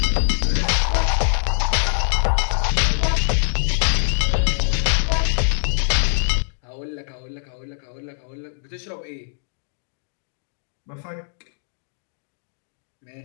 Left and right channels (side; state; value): right; silent; digital silence